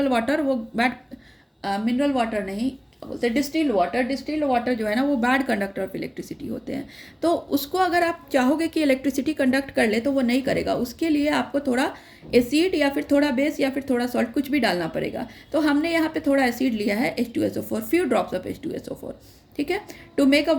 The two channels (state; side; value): identical; both; correlation 1.00